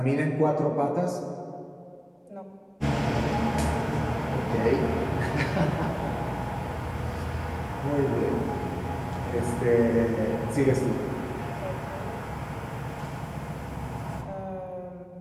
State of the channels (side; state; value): both; identical; correlation 1.00